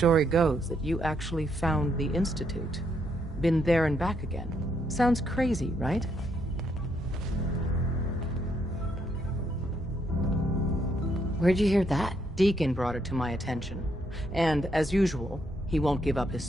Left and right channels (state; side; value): normal; both; correlation 0.74